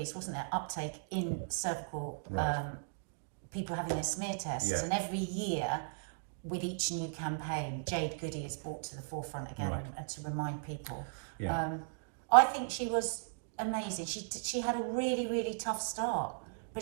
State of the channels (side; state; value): left; silent; digital silence